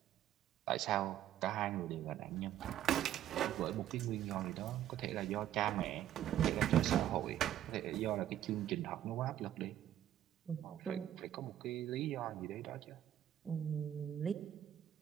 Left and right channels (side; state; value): left; quieter; 11.6 dB